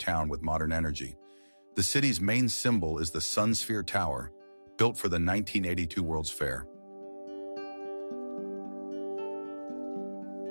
with modern energy. The city's main symbol is the Sun Sphere Tower, built for the 1982 World's Fair.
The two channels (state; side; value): inverted; both; correlation -1.00